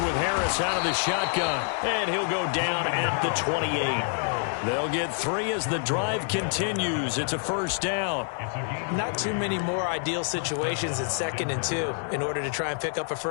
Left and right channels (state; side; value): silent; right; 60 dB below the other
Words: with Harris out of the shotgun, and he'll go down at the 28. They'll get 3 as the drive continues. It's a first down. Not too many more ideal situations at 2nd and 2 in order to try and pick up a